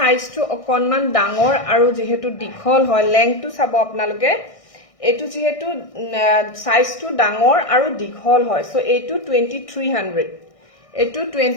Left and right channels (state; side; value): late; right; 1.6 ms